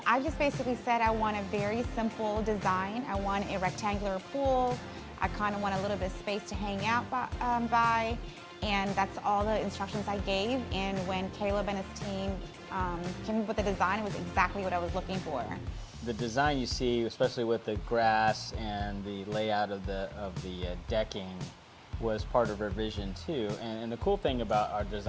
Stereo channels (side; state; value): both; identical; correlation 1.00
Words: I just basically said I want a very simple design. I want a rectangular pool. I kind of want a little bit of space to hang out by, and that's all the instructions I gave. And when Caleb and his team came up with the design, it was exactly what I was looking for. The design you see, especially with the grass and the layout of the decking, was part of our vision too. And the cool thing about our